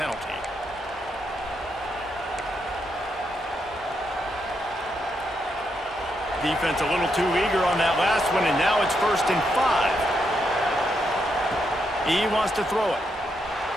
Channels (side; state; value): both; normal; correlation 0.80